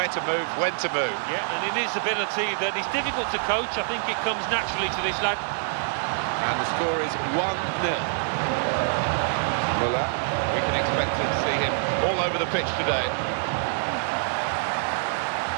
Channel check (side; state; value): left; silent; digital silence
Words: to move, when to move. Yeah, and in his ability that is difficult to coach, I think it comes naturally to this lad. And the score is 1-0. Müller. We can expect to see him all over the pitch today.